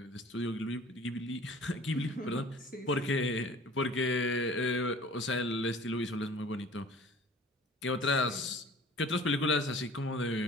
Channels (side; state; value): both; normal; correlation 0.46